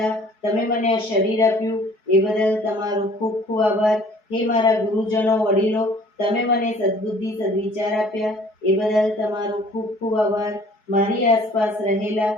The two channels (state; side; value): late; right; 4.7 ms